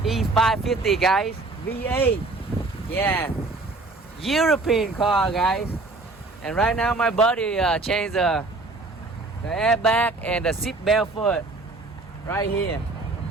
E550 guys, V8. Yeah, European car guys. And right now my buddy changed the airbag and the seat belt for it right here.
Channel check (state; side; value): quieter; left; 3.3 dB